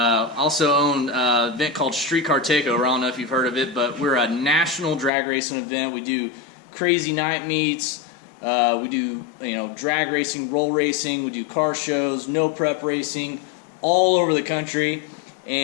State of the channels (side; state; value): right; drops out; at 5.1 s